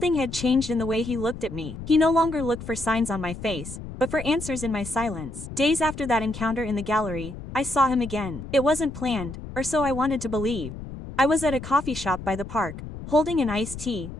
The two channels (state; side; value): noise; left; rumble, 11 dB below the sound